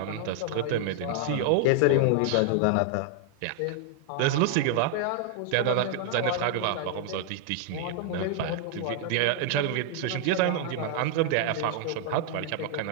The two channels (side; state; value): both; different; correlation -0.01